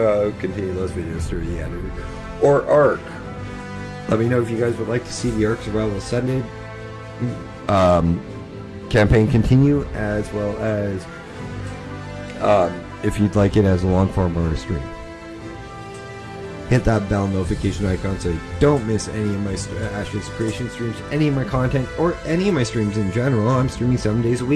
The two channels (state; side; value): identical; both; correlation 1.00